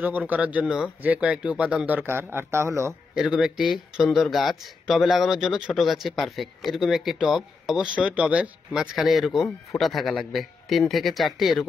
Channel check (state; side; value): quieter; right; 4.5 dB